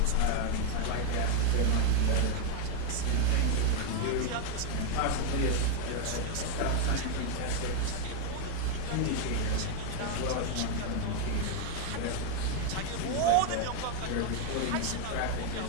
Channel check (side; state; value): both; different; correlation 0.00